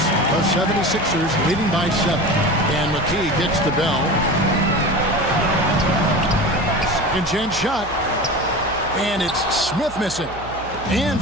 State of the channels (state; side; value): noise; right; hum, 15 dB below the sound